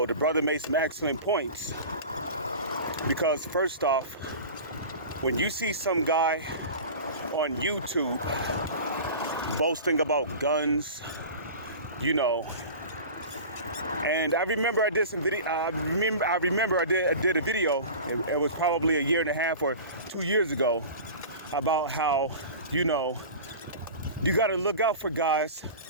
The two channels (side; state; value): both; inverted; correlation -0.35